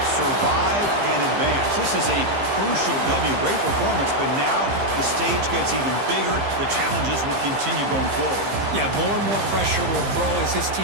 survive and advance. This is a crucial W. Great performance, but now the stage gets even bigger. The challenges will continue going forward. Yeah, more and more pressure will grow as this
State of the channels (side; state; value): left; late; 15 ms